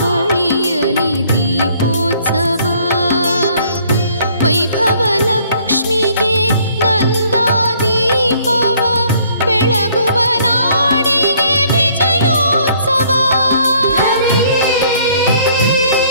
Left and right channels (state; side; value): inverted; both; correlation -0.61